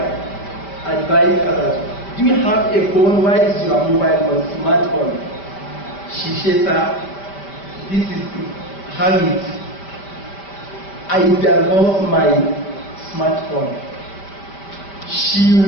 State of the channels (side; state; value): right; late; 5.1 ms